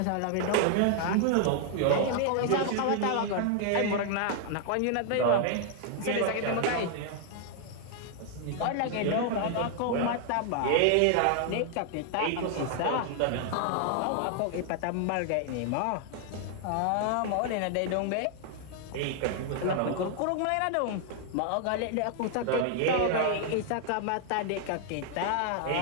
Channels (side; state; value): both; different; correlation 0.00